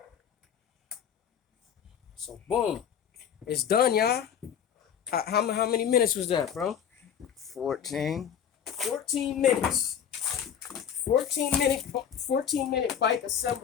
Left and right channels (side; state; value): right; quieter; 8.5 dB